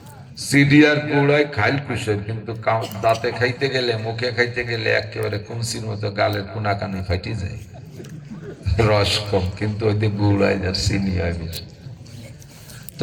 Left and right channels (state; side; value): identical; both; correlation 1.00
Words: চিনি আর গুড় হয় খাইল কুশর, কিন্তু দাঁতে খাইতে গেলে, মুখে খাইতে গেলে একেবারে কুমসির মতো গালের কোনা কানে ফাটি যায়। রস কম, কিন্তু ওই গুড় হয় যার চিনি হয় বেশি।